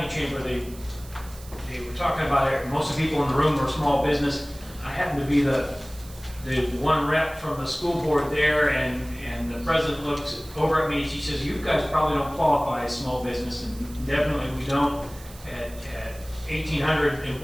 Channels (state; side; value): noise; right; hiss, 19 dB below the sound